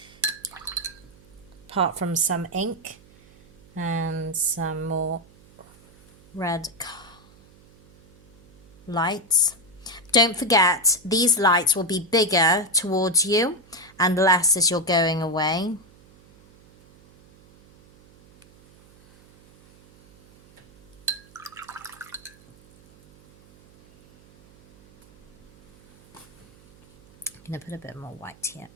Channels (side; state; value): right; noise; hum, 26 dB below the sound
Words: Apart from some ink and some more red lights. Don't forget, these lights will be bigger towards you and less as you're going away. I'm going to put a bit more white here.